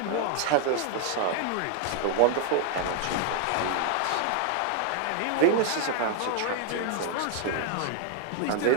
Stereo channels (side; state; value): both; different; correlation 0.00